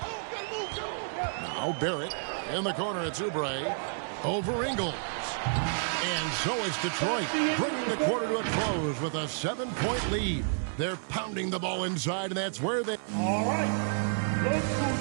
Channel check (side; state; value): left; silent; 58 dB below the other